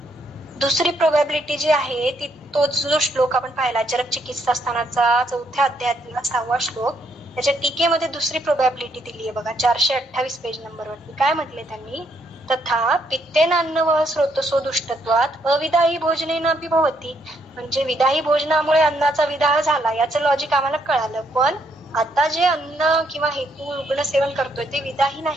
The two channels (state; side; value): normal; both; correlation 0.73